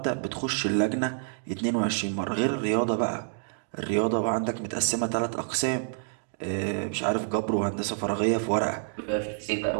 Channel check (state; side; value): silent; left; digital silence